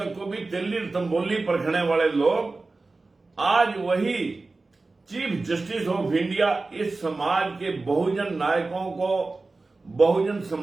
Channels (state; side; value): quieter; left; 3.5 dB